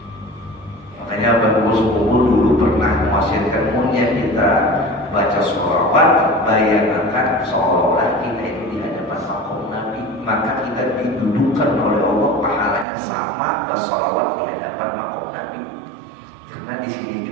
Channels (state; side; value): drops out; left; at 12.9 s